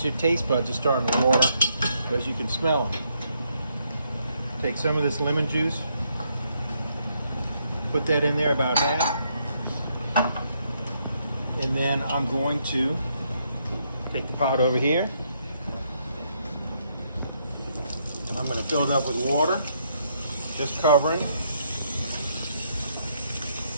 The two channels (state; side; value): inverted; both; correlation -0.75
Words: your taste buds are starting to water because you can smell them. Take some of this lemon juice, put that in there about half, and then I'm going to take the pot over here, and I'm going to fill it up with water, just covering.